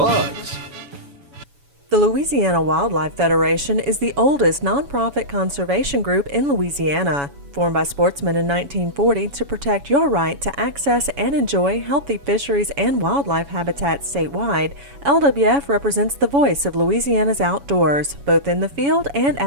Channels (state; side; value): late; left; 7.1 ms